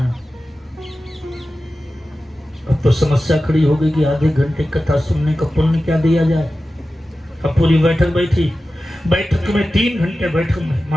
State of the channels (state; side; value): normal; both; correlation 0.94